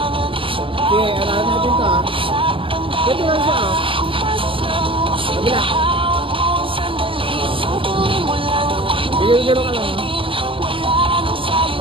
Sige, alahan natin ito ah. Dito lang siya ah. Kabila. Bigyan-bigyan ka lang ah.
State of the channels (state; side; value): late; left; 0.25 ms